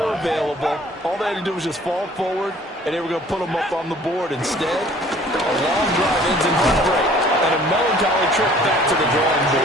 available. All they had to do was just fall forward, and they were going to put them up on the board. Instead, a long drive ends in heartbreak and a melancholy trip back to the drawing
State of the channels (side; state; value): both; normal; correlation 0.53